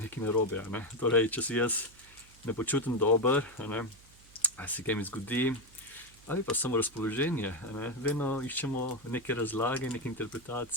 narobe. Torej, če se jaz ne počutim dober, ali se kaj mi zgodi, ali pa samo razpoloženje, vedno iščemo neke razlage, neke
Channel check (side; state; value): right; noise; hum, 25 dB below the sound